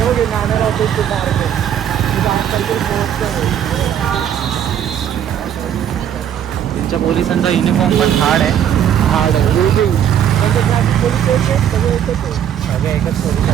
त्यांच्या पोलिसांचा युनिफॉर्म पण हार्ड आहे. सगळे एकच पोलीस.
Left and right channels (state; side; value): quieter; left; 9.6 dB